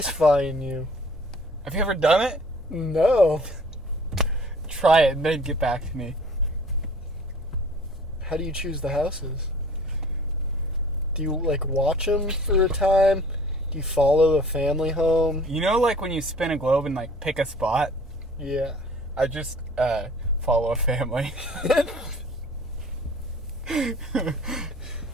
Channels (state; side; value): normal; both; correlation 0.50